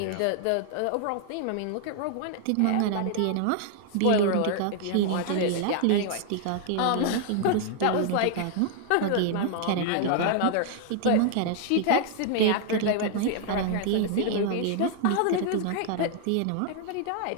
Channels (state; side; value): different; both; correlation 0.00